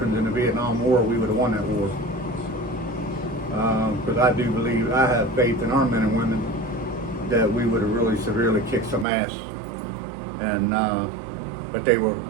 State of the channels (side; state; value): left; drops out; at 9.1 s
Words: in the Vietnam War, we would have won that war. Because I do believe, I have faith in our men and women that we would have really severely kicked some ass. And but they